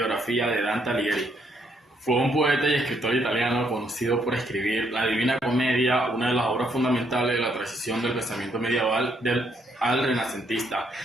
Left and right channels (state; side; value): normal; both; correlation 0.72